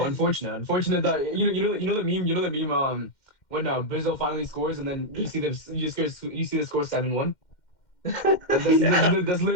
that you know the meme when Brazil finally scores and then you see the score 7-1. Yeah, That's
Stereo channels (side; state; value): right; late; 2.1 ms